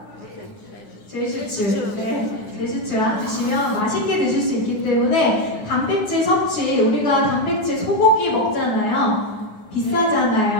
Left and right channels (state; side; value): late; right; 9.7 ms